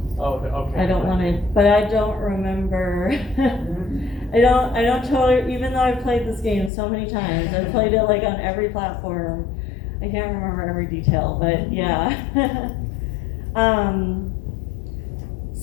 want to," but I don't remember. I don't totally, even though I've played this game so many times, I've played it like on every platform. I can't remember every detail, but yeah.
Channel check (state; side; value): drops out; right; at 6.7 s